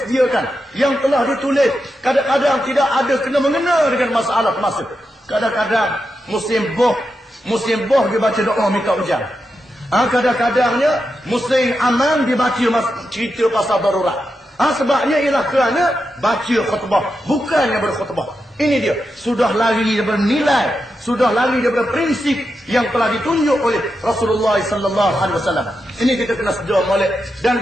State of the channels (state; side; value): normal; both; correlation 0.87